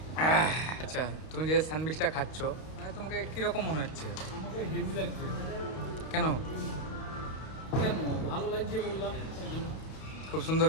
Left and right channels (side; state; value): right; late; 32 ms